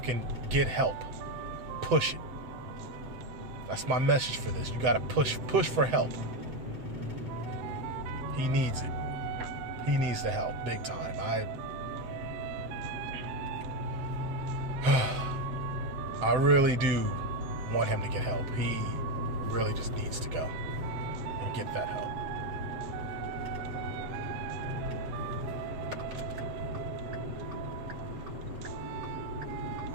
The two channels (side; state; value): left; late; 7.8 ms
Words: get help. Push it. That's my message for this. You gotta push for help. He needs it. He needs the help, big time. I really do want him to get help. He really just needs to go and get that help.